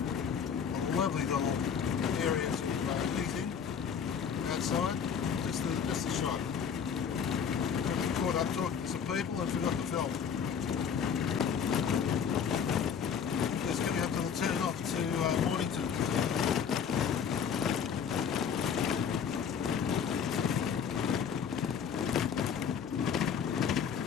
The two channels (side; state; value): right; quieter; 7.2 dB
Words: lovely little area to eat in outside. Just a shot. Got caught up talking to some people and forgot to film.